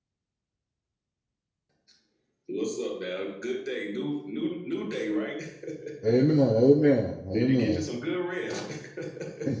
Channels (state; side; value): identical; both; correlation 1.00